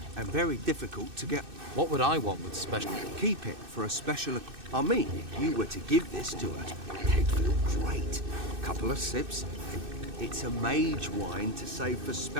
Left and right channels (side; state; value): left; late; 2.6 ms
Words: and very difficult to get... What would I want with special... Keep it for a special... I mean, if you were to give this to her, they'd feel great. Couple of sips. It's a mage wine to save for